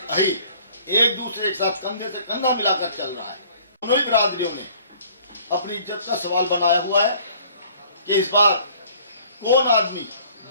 अहीर एक दूसरे के साथ कंधे से कंधा मिलाकर चल रहा है। दोनों ही बिरादरियों ने अपनी इज्जत का सवाल बनाया हुआ है कि इस बार कौन आदमी,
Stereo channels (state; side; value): inverted; both; correlation -0.55